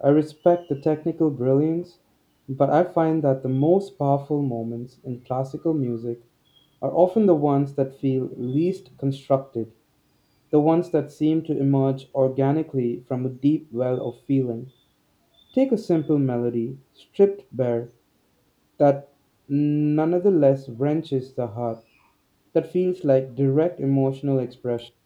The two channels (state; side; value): identical; both; correlation 1.00